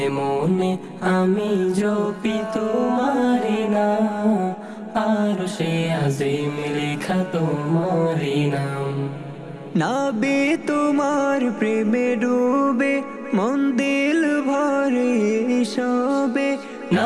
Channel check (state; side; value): identical; both; correlation 1.00